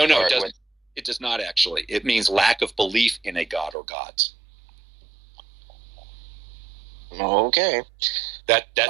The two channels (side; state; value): left; drops out; at 3.8 s